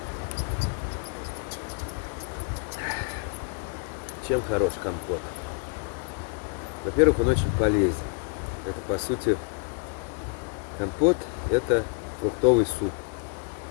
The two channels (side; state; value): right; quieter; 39.6 dB